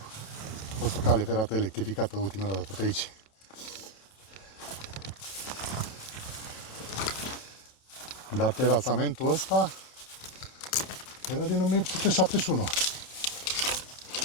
A fost o cale ferată electrificată ultima dată pe aici. Dar terasamentul ăsta era din 1871.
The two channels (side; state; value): right; late; 27 ms